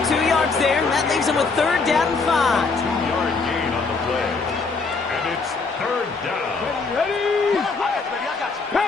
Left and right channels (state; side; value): quieter; right; 4.3 dB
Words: 2 yards there, and that leaves them with 3rd down and 5. 2-yard gain on the play. And it's 3rd down. Ready?